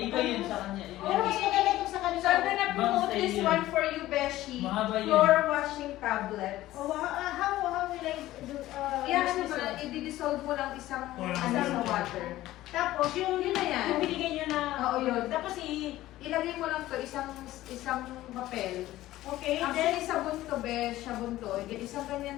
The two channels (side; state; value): right; quieter; 15.6 dB